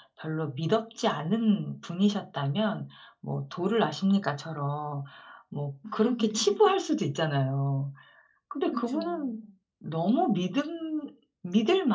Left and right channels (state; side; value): identical; both; correlation 1.00